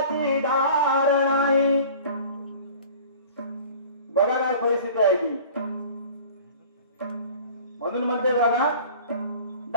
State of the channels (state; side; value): inverted; both; correlation -0.44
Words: धार नाही बघा काय परिस्थिती आहे ती म्हणून म्हणते बघा